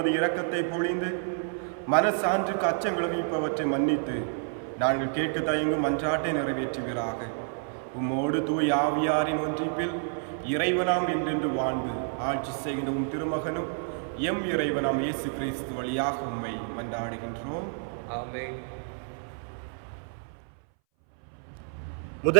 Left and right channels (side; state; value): left; silent; 59 dB below the other